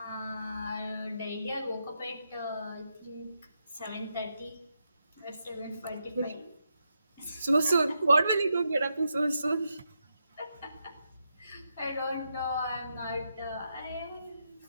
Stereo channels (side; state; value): both; inverted; correlation -0.84